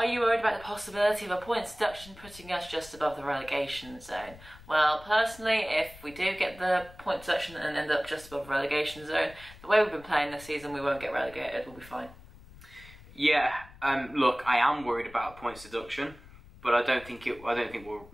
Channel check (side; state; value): left; noise; rumble, 20 dB below the sound